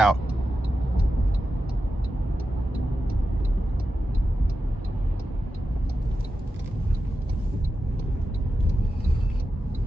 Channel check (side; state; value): both; normal; correlation 0.91